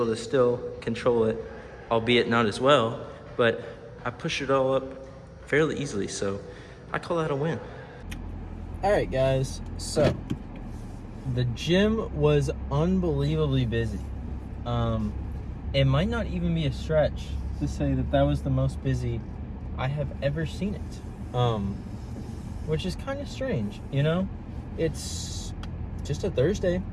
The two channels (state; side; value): identical; both; correlation 1.00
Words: to still control it, albeit not as well, but I pushed it all up fairly easily, so I call that a win. All right, guys, so the gym was unbelievably busy. It might not even be a stretch to say that that was the most busy I have ever seen it, which is kind of strange, you know? It's just a Thursday.